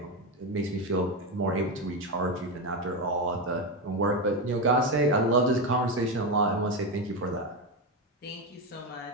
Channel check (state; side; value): normal; both; correlation 0.12